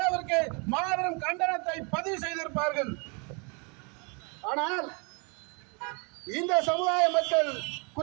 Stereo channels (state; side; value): quieter; left; 32.8 dB